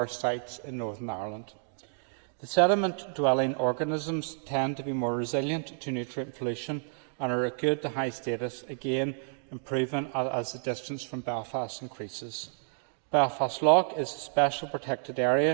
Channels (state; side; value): silent; left; digital silence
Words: sites in Northern Ireland. The sediment-dwelling organisms tend to be more resilient to nutrient pollution and are at good to high status, again improving as the distance from Belfast increases. Belfast Lough is a special protected